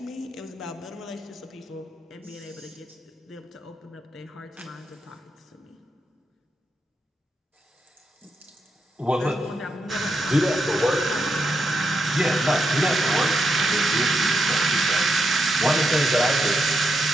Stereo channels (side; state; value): both; normal; correlation 0.83